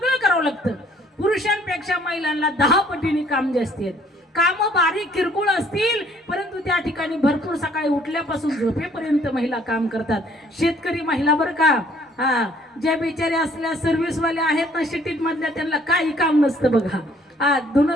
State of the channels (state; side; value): normal; both; correlation 0.61